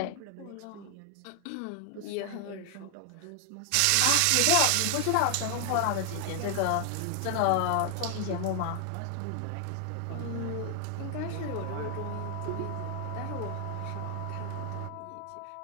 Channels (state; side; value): different; both; correlation 0.00